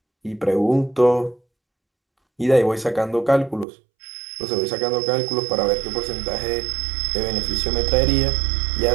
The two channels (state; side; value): drops out; left; at 3.7 s